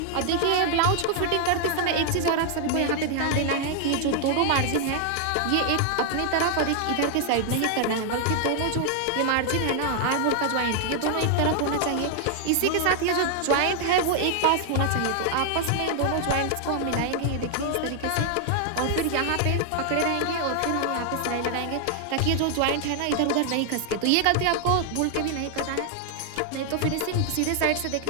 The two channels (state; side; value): different; both; correlation 0.00